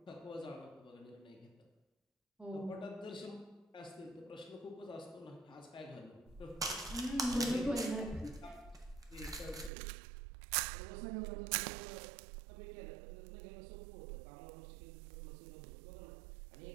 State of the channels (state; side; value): drops out; left; at 9.7 s